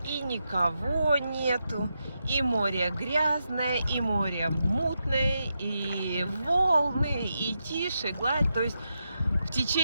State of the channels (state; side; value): inverted; both; correlation -0.86